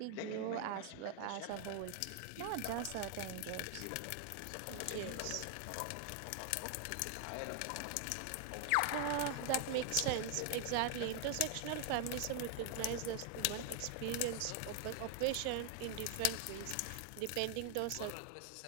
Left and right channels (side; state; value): both; different; correlation 0.00